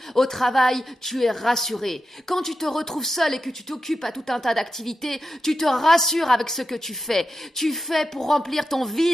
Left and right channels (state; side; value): normal; both; correlation 0.89